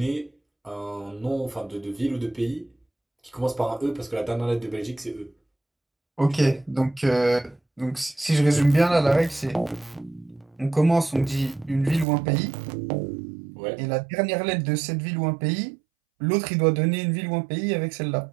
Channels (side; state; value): left; drops out; at 12.1 s